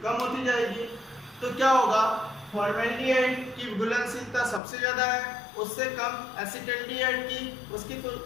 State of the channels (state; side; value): drops out; right; at 4.6 s